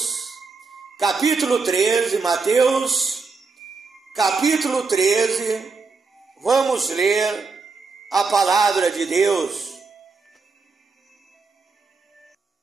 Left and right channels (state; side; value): quieter; left; 4.5 dB